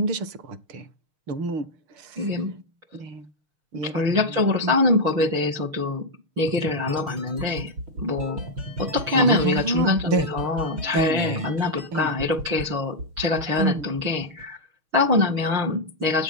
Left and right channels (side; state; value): left; late; 6.5 ms